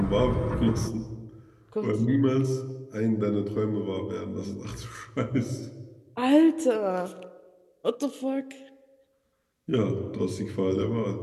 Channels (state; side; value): identical; both; correlation 1.00